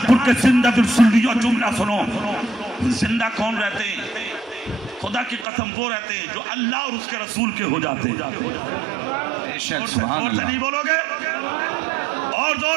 کے زندہ دل سنیو جملہ سنو زندہ کون رہتے ہیں خدا کی قسم وہ رہتے ہیں جو اللہ اور اس کے رسول کے ہو جاتے ہیں زور سے نہیں بولو گے اور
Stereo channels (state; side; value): drops out; left; at 5.5 s